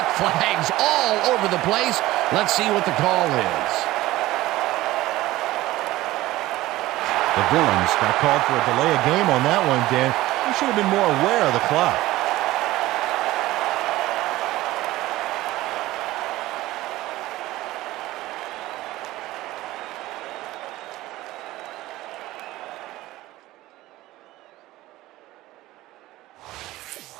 flags all over the place. Let's see what the call is. The Villains got called for a delay of game on that one, Dan. You should have been more aware of the clock.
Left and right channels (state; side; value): quieter; left; 17.1 dB